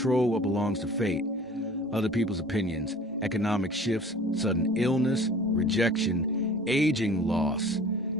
what belongs to fate, other people's opinions, economic shifts, sudden illness, rejection, aging, loss,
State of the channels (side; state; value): both; normal; correlation 0.46